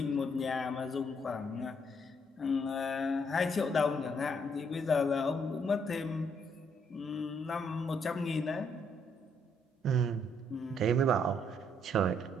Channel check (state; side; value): normal; both; correlation 0.71